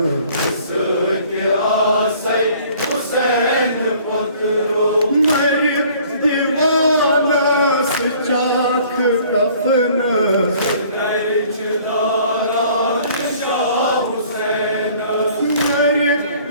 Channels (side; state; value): both; inverted; correlation -0.54